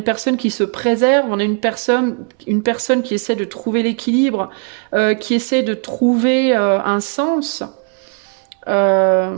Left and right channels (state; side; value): quieter; left; 36.8 dB